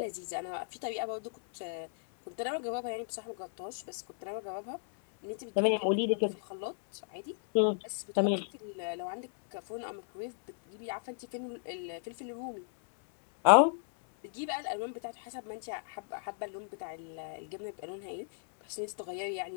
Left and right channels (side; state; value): right; silent; 55 dB below the other